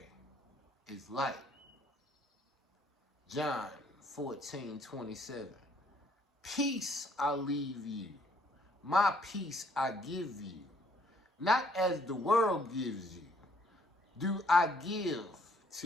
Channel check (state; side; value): normal; both; correlation 0.64